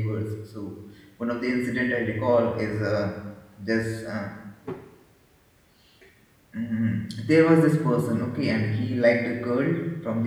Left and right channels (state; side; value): identical; both; correlation 1.00